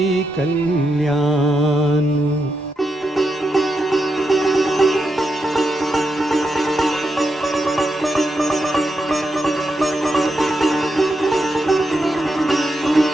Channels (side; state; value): both; normal; correlation 0.85